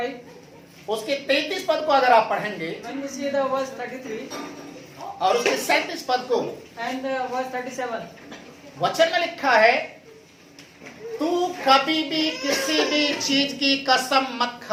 उसके 33 पद को अगर आप पढ़ेंगे when we see the verse 33 और उसके 37 पद को, and verse 37, वचन में लिखा है, तू कभी भी किसी भी चीज की कसम मत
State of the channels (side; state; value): both; identical; correlation 1.00